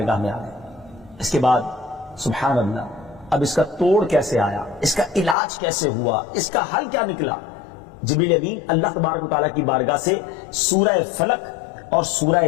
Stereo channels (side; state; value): right; drops out; at 5.4 s